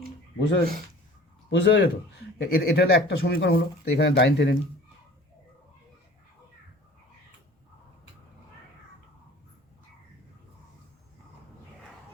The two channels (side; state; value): both; normal; correlation 0.46